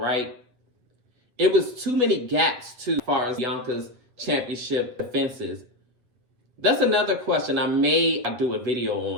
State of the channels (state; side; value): late; left; 8.2 ms